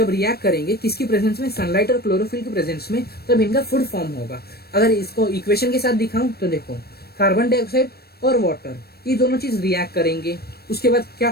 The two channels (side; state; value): right; late; 0.46 ms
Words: रिएक्ट करेंगे किसकी प्रेजेंस में, सनलाइट और क्लोरोफिल के प्रेजेंस में, तब इनका फूड फॉर्म होगा। अगर इसको इक्वेशन के साथ दिखाऊं तो देखो कार्बन डाइऑक्साइड और वाटर ये दोनों चीज रिएक्ट करेंगे, उसके बाद क्या